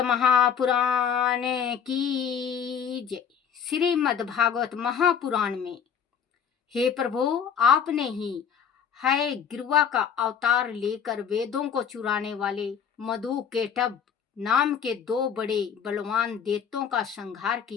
महापुराण की जय। श्रीमद् भागवत महापुराण में, हे प्रभु, आपने ही है गिरुआ का अवतार लेकर वेदों को चुराने वाले मधु केटभ नाम के दो बड़े बलवान दैत्यों का संहार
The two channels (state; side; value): quieter; right; 7.5 dB